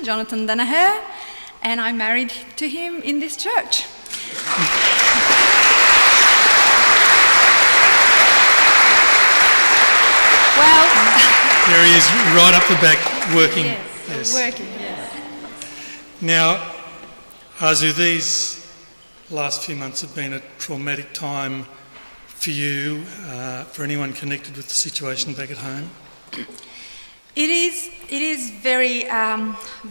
Danaher, and I married to him in this church. Well, There he is, right up the back, working. yes, working, yes. Now, Arzu, these last few months have been a traumatic time for you, for anyone connected with the situation back at home. It is very,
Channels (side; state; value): both; inverted; correlation -1.00